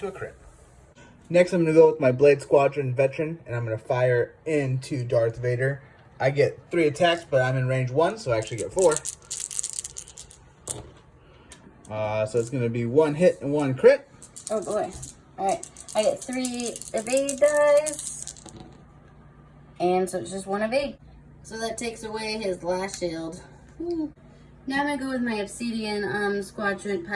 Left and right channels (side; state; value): both; identical; correlation 1.00